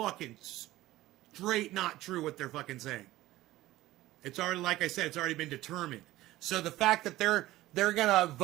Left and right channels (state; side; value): quieter; left; 16.6 dB